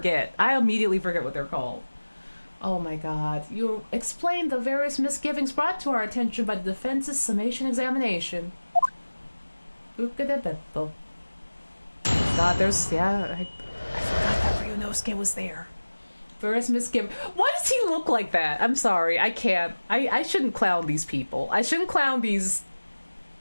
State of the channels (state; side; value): inverted; both; correlation -1.00